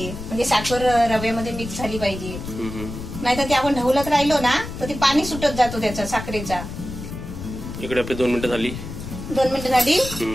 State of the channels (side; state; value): left; noise; rumble, 9 dB below the sound